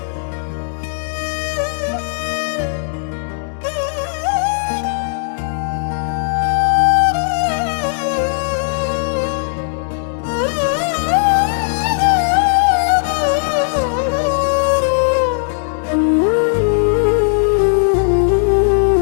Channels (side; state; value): right; silent; digital silence